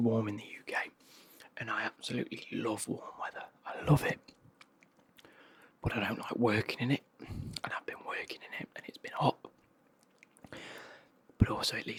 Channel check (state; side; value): identical; both; correlation 1.00